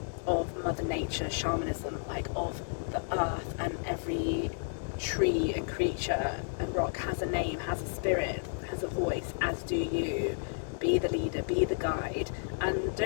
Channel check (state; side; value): silent; right; digital silence